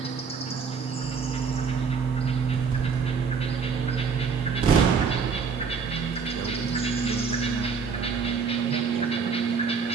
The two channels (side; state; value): left; quieter; 5.7 dB